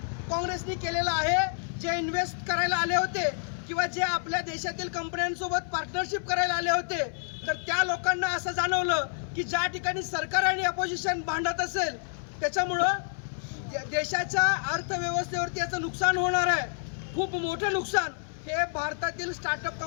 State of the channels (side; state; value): right; silent; 58 dB below the other